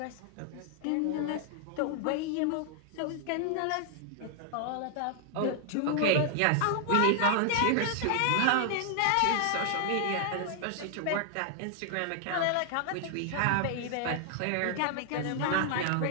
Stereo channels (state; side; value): different; both; correlation 0.00